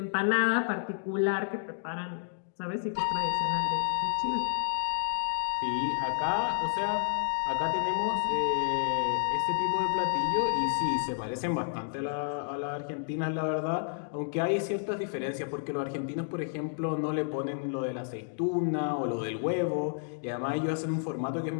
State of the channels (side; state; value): right; silent; digital silence